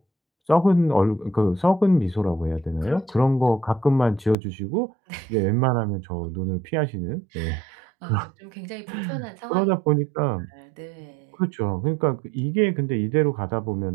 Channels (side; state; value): left; drops out; at 4.4 s